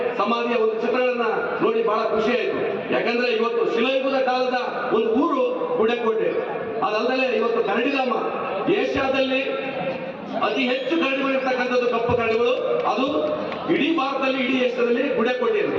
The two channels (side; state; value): both; identical; correlation 1.00